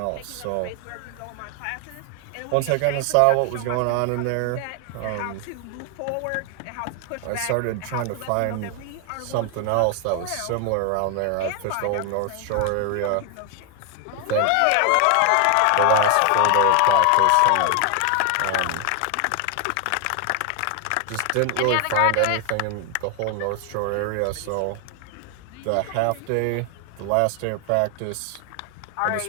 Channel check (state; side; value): different; both; correlation 0.00